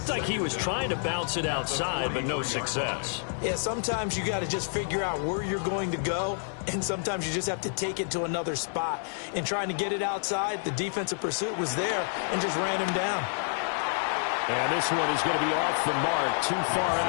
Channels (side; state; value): right; silent; digital silence